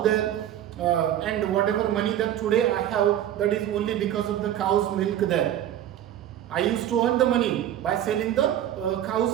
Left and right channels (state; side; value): quieter; left; 11.4 dB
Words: and whatever money that today I have, that is only because of the cow's milk there. I used to earn the money by selling the